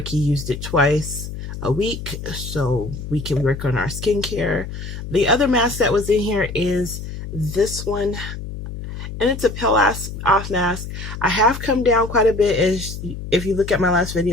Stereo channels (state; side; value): noise; left; hum, 9 dB below the sound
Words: used it twice a week so we can work on our skincare. The other mask that was in here is this one, and it's a peel off mask. I have come down quite a bit. As if you look at my last